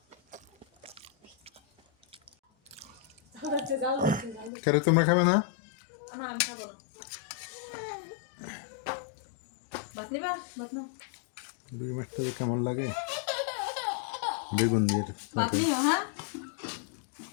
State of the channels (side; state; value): right; drops out; at 4.5 s